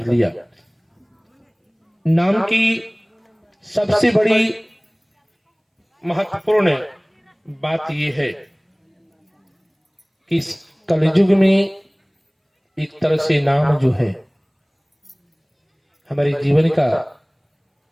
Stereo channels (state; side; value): identical; both; correlation 1.00